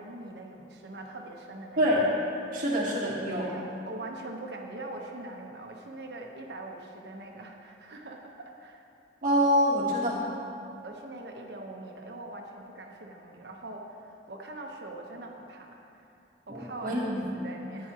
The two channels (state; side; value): normal; both; correlation -0.03